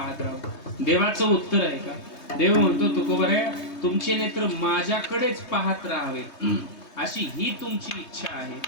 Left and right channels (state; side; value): late; right; 3.2 ms